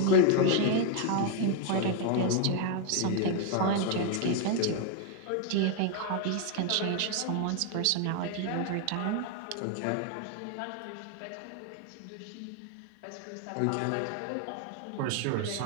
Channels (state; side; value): different; both; correlation 0.01